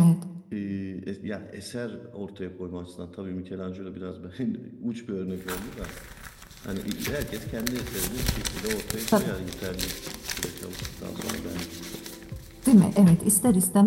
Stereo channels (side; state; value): both; identical; correlation 1.00